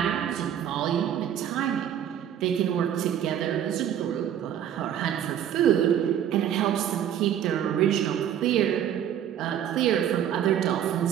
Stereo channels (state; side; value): quieter; left; 10.0 dB